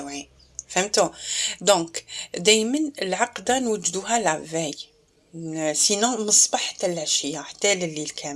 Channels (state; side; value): identical; both; correlation 1.00